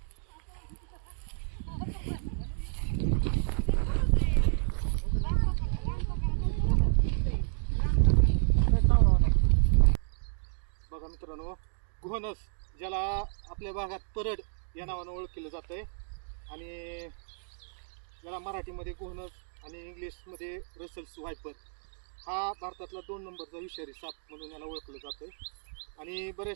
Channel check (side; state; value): left; silent; digital silence